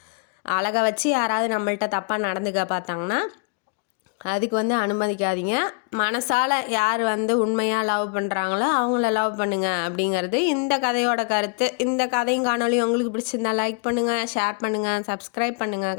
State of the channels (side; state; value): right; quieter; 35.4 dB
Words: அழகை வச்சு யாராவது நம்மள்கிட்ட தப்பாக நடந்துக்க பார்த்தாங்கன்னா அதுக்கு வந்து அனுமதிக்காதீங்க. மனசால் யார் வந்து உண்மையாக லவ் பண்ணுறாங்களோ அவங்கள லவ் பண்ணுங்கள் அப்படிங்கிறது இந்த கதையோட கருத்து. இந்த கதையும் காணொலி உங்களுக்கு பிடிச்சிருந்தா லைக் பண்ணுங்கள், ஷேர் பண்ணுங்கள், சப்ஸ்கிரைப் பண்ணுங்கள்,